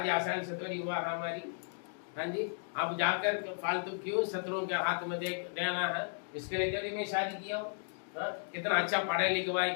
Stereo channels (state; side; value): silent; right; digital silence